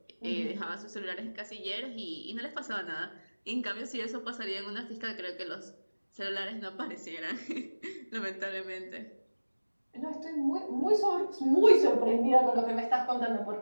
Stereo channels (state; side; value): inverted; both; correlation -1.00